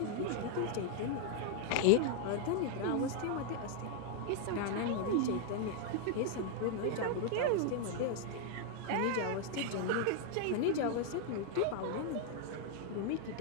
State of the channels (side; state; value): both; different; correlation 0.00